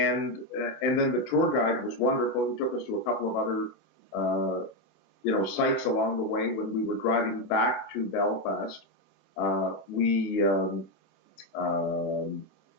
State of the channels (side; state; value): both; normal; correlation 0.07